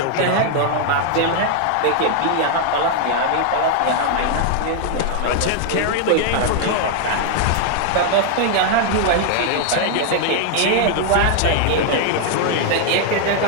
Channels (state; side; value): different; both; correlation 0.00